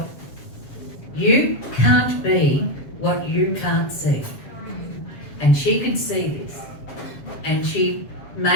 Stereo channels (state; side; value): late; right; 7.3 ms